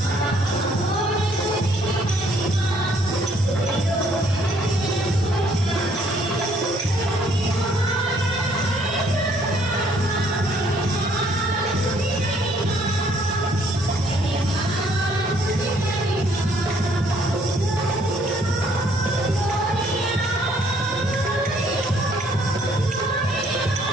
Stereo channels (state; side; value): normal; both; correlation 0.64